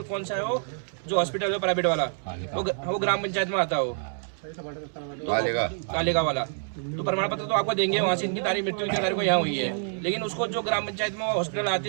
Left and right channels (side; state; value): left; silent; digital silence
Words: कौन सा है, वो जो हॉस्पिटल है प्राइवेट वाला, वो ग्राम पंचायत में आता है, वो कालेगा वाला। तो प्रमाण पत्र तो आपको देंगे, वहाँ से इनकी तारीख मृत्यु की तारीख को यहाँ हुई है, लेकिन उसको जो ग्राम पंचायत में हॉस्पिटल आते